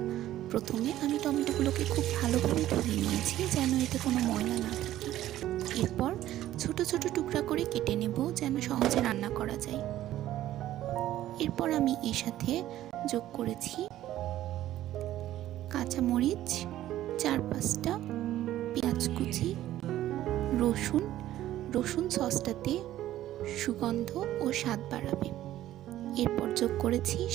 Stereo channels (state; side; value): quieter; left; 13.6 dB